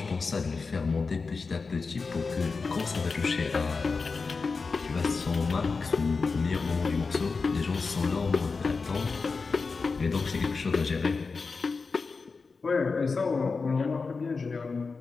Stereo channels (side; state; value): right; quieter; 4.5 dB